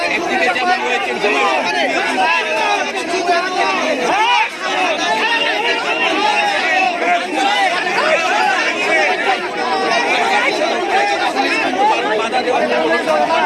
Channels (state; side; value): identical; both; correlation 1.00